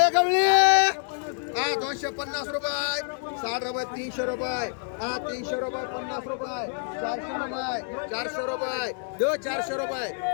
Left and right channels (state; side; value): silent; right; 60 dB below the other